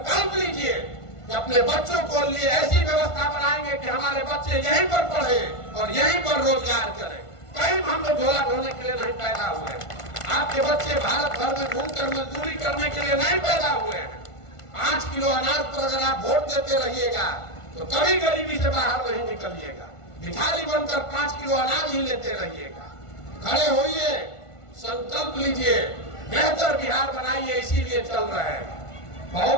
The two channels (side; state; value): right; late; 1.5 ms